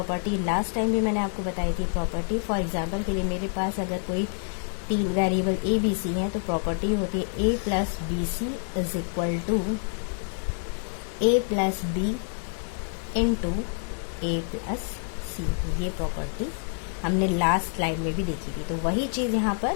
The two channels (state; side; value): silent; right; 60 dB below the other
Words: लास्ट टाइम भी मैंने आपको बताई थी। प्रॉपर्टी फॉर एग्जांपल के लिए मेरे पास अगर कोई 3 वेरिएबल ए बी सी हैं तो प्रॉपर्टी होती है a plus b c is equal to a plus B into A plus c. ये प्रॉपर्टी हमने लास्ट स्लाइड में भी देखी थी, तो वही चीज़ यहाँ पर